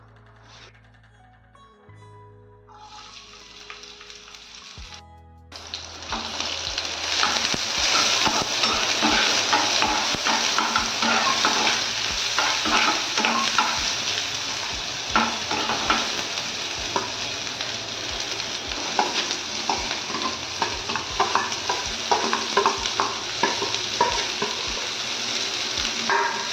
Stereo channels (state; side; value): identical; both; correlation 1.00